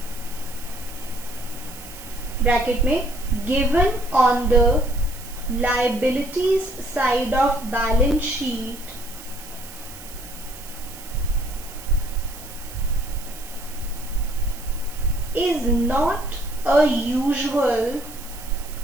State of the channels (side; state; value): right; noise; hiss, 16 dB below the sound